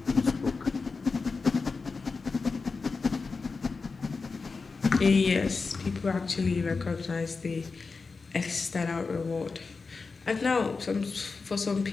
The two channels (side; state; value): right; quieter; 4.4 dB